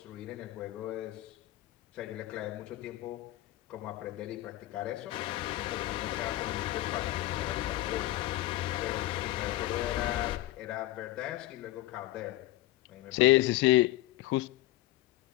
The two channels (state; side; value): quieter; right; 16.2 dB